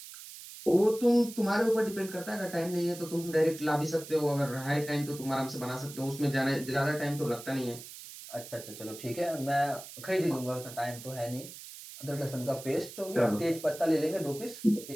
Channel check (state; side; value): noise; right; hiss, 14 dB below the sound